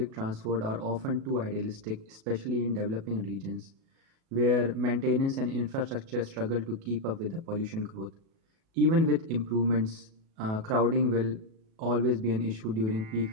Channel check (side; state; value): left; late; 37 ms